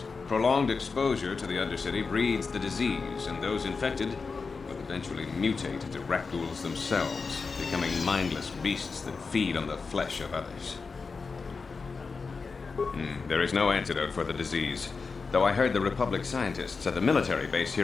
Prolonged exposure to the Undercity breeds the disease, and those infected will eventually mutate into rat ghouls themselves, becoming mindless beasts that feed on the flesh of others. There is no antidote for the disease, though I heard the Republic scientists at the military base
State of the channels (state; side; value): quieter; right; 4.7 dB